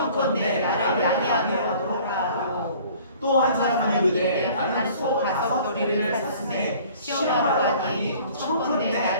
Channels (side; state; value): both; inverted; correlation -0.51